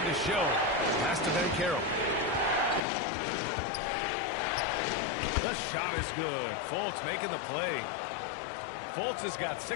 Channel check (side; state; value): right; drops out; at 2.8 s